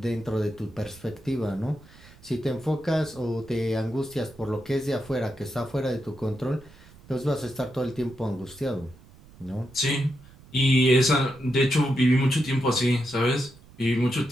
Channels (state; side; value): noise; right; rumble, 23 dB below the sound